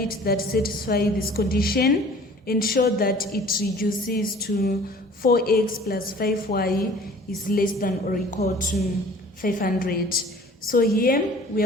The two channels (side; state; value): both; normal; correlation 0.49